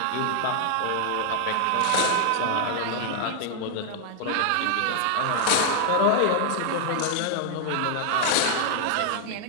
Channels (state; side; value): different; both; correlation 0.00